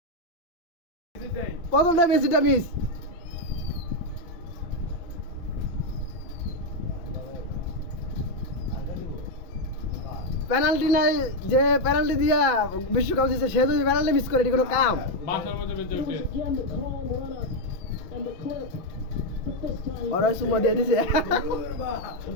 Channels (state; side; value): late; right; 6.0 ms